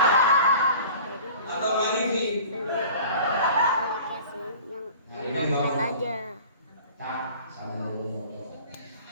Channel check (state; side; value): inverted; both; correlation -0.43